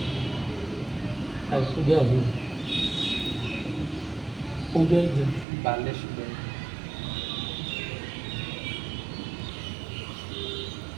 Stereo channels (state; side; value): drops out; left; at 5.5 s